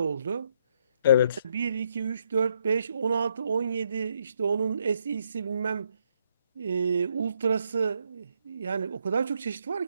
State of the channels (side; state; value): both; inverted; correlation -0.74